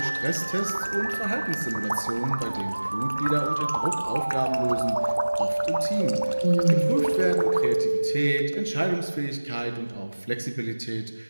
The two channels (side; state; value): both; inverted; correlation -1.00